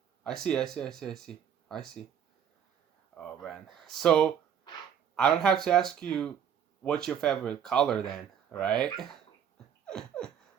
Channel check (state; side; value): quieter; left; 8.6 dB